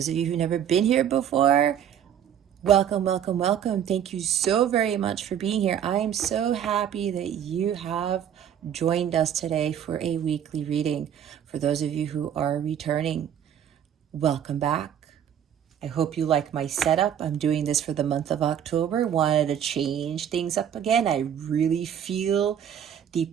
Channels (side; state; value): left; quieter; 9.4 dB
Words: of you who've never been here before, welcome, welcome, welcome. Thank you so very much for being here. I am so happy that you have joined us today for a weekly reading. For those of you who are returning, welcome back. I hope you like my setup. I'm doing this for the month of October. Wanted to change things up again. I really feel the